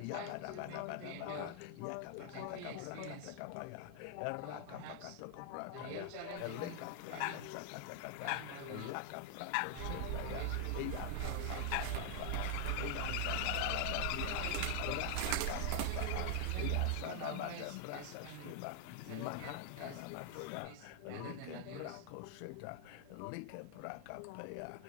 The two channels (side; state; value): both; different; correlation 0.00